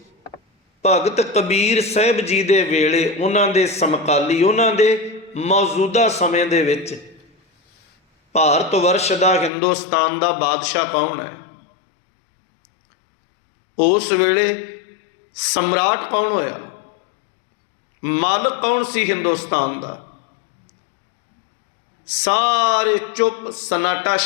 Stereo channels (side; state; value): right; drops out; at 9.5 s